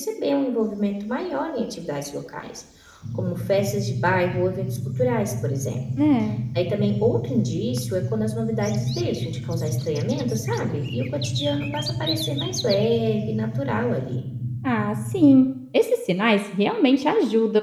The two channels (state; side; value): identical; both; correlation 1.00